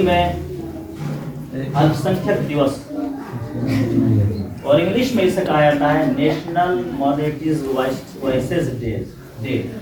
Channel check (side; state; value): both; identical; correlation 1.00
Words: में अल्पसंख्यक दिवस और इंग्लिश में इसे कहा जाता है नेशनल माइनॉरिटीज वॉइसेस डे।